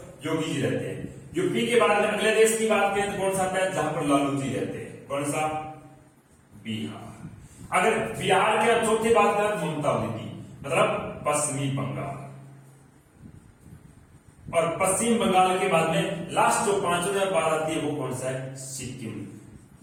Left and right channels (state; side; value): identical; both; correlation 1.00